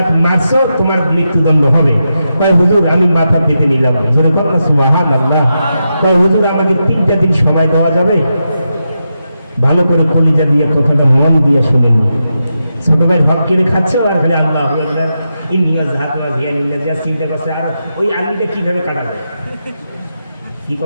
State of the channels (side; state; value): both; inverted; correlation -0.87